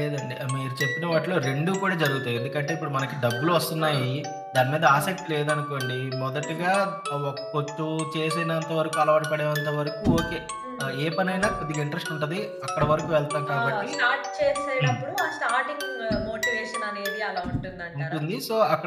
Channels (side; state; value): both; identical; correlation 1.00